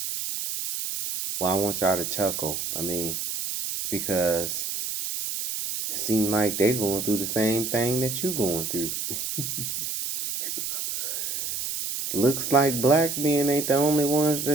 well, I want y'all to chuckle. I mean, because it seems like they're going through the same thing that you going through. Looks like black men ain't the only ones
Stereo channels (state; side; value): noise; right; hiss, 4 dB below the sound